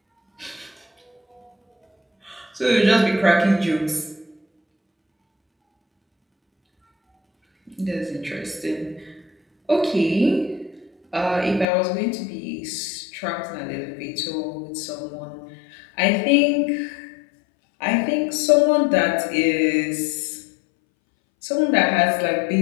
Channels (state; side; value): drops out; right; at 11.7 s